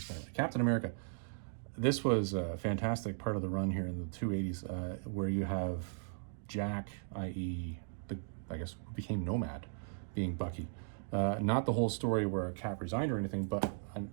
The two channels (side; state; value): left; silent; digital silence